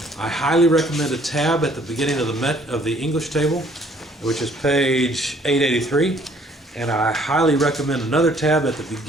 I highly recommend a tab at the beginning of the English table, which is page 883. And I highly recommend another tab at the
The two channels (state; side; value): normal; both; correlation 0.60